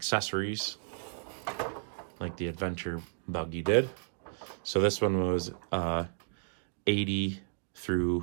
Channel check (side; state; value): left; silent; digital silence